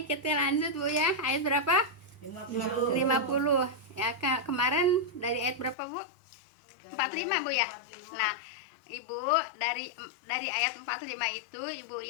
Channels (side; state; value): right; drops out; at 5.8 s